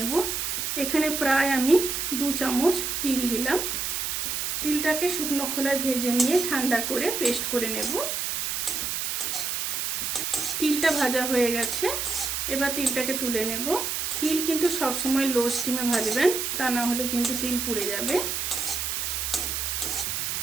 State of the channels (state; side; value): noise; right; hiss, 1 dB below the sound